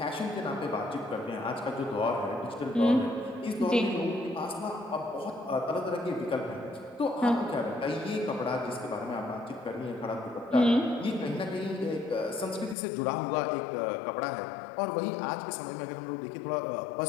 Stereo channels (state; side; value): drops out; right; at 12.8 s